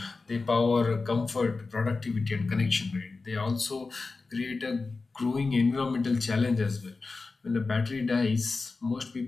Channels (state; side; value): quieter; right; 3.9 dB